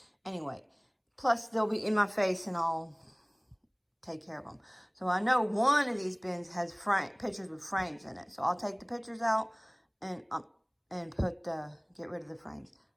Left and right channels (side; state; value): both; identical; correlation 1.00